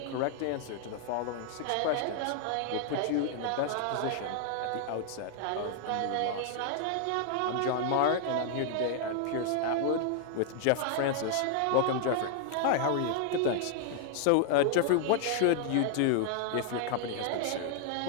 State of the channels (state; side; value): different; both; correlation 0.00